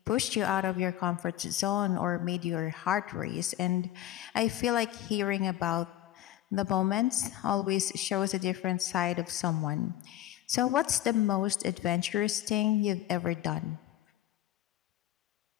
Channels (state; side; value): quieter; right; 13.4 dB